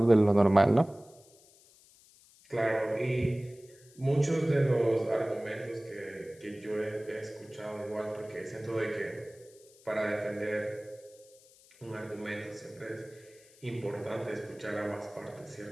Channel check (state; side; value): noise; left; hiss, 26 dB below the sound